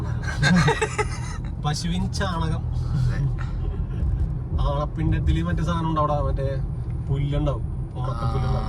പശുവിൻ ചാണകം. ആണപ്പിണ്ടത്തില് മറ്റേ സാധനം ഉണ്ടാവും, മറ്റേ പുല്ലുണ്ടാവും, ഉണക്കപ്പുല്ലുണ്ടാവും.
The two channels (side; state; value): both; identical; correlation 1.00